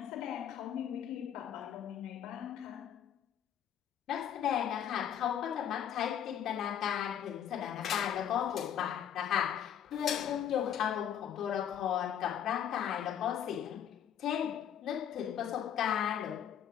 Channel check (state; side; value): quieter; right; 9.4 dB